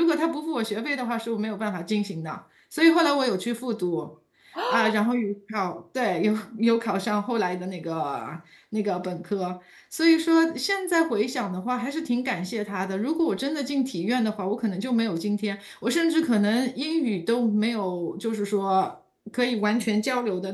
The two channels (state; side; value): identical; both; correlation 1.00